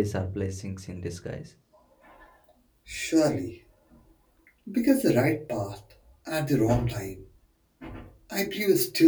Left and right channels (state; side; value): identical; both; correlation 1.00